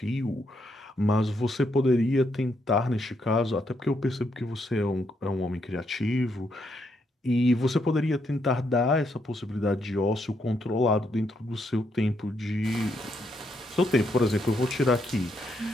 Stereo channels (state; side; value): normal; both; correlation 0.77